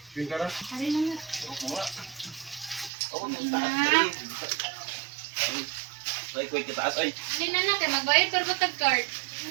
Pinta na? Hari na nga. Hindi na na, kaya magbayad pero ba tag-card?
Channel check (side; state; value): left; drops out; at 2.9 s